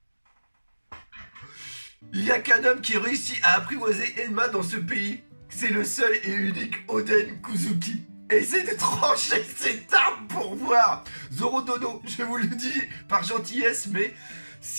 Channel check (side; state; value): both; inverted; correlation -1.00